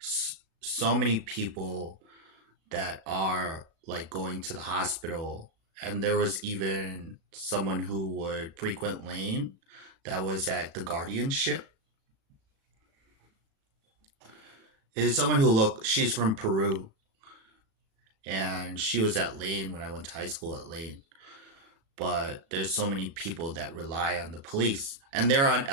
many people that are like going to the hospital, and there was even someone who would frequent Lane that was at the guardianship. Is someone who look she's from Peru, and she was at Lane when I went to high school at Lane. But there's so many people that rely on the police, and they're on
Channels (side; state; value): left; late; 37 ms